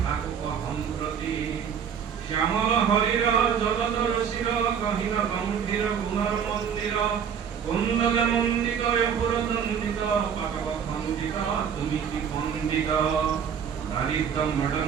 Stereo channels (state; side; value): quieter; left; 7.6 dB